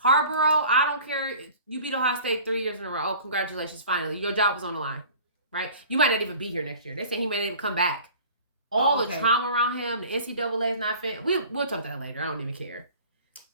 I don't care. You beat Ohio State 3 years in a row. Oh, congratulations, finally. Your job was on the line, right? You might not even be here next year. They say he may not even come back. All the trauma around him, the NCAA is not fit. We'll talk about that later. I don't even care.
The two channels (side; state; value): both; inverted; correlation -0.45